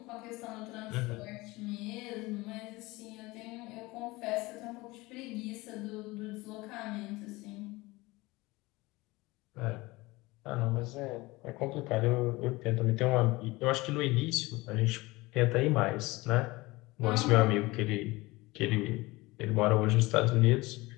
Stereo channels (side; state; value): right; quieter; 21.6 dB